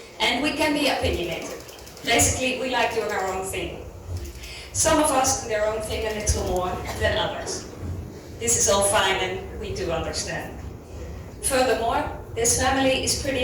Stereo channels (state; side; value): identical; both; correlation 1.00